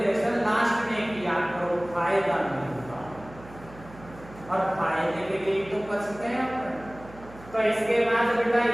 लास्ट में किया करो, फायदा नहीं होता और फायदे के लिए तो बचते हैं अपन। तो इसके बाद बेटा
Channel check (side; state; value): right; noise; hum, 19 dB below the sound